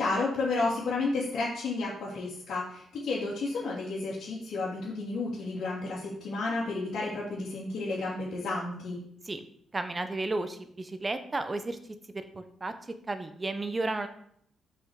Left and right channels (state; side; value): normal; both; correlation 0.81